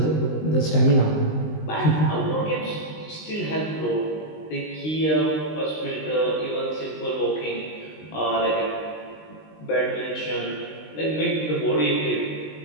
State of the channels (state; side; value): late; right; 19 ms